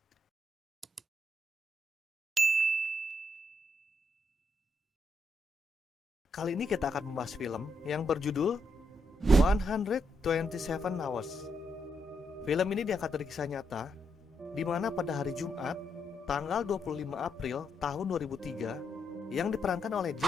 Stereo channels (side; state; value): both; normal; correlation 0.79